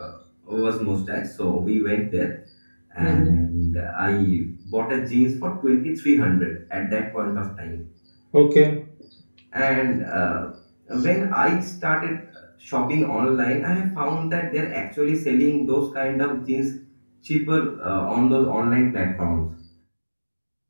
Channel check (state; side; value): inverted; both; correlation -1.00